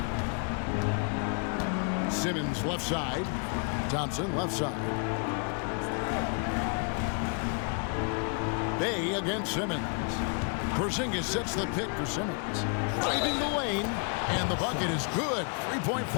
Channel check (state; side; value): quieter; right; 40.0 dB